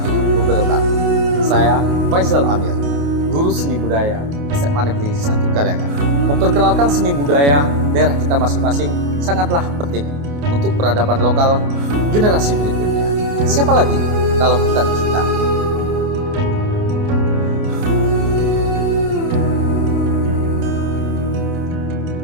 wabarakatuh. Saya Faisal Amir, guru seni budaya SMA Negeri 1 Kaliangan. Memperkenalkan seni budaya daerah kita masing-masing sangatlah penting untuk peradaban lokal generasi berikutnya. Siapa lagi kalau bukan kita?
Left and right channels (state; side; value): late; left; 28 ms